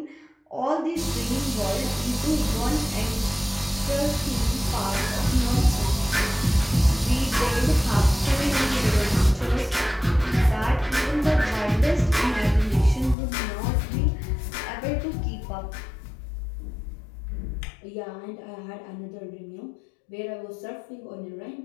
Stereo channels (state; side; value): drops out; right; at 13.2 s